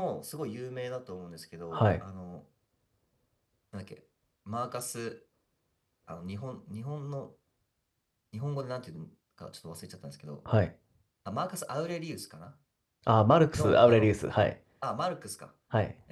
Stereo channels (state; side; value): identical; both; correlation 1.00